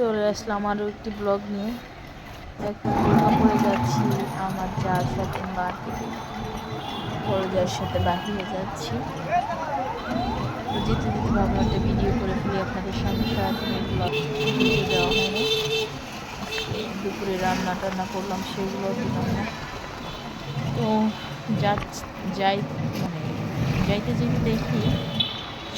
আসলাম আরও একটি ব্লগ নিয়ে। এখন দুর্গাপুরে যাচ্ছি আমার যার সাথে মার্কেটে, বড় যার সাথে বাহিরে যাচ্ছি। তো যেতে যেতে ভাবলাম একটা ভিডিও করে ফেলি আপনাদের সামনে। সারাদিনের ব্লগ ভিডিও দেওয়া হয়নি, আজকে দুপুরে রান্না টান্না করলাম সেগুলো দিলাম না। তো যাই মানে যাইতে যেতে দেখি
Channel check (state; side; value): identical; both; correlation 1.00